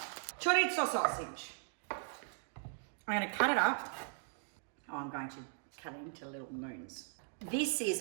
Chorizo sausage. I'm going to cut it up. Oh, I'm going to cut it into little moons. This is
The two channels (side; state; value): left; silent; 52 dB below the other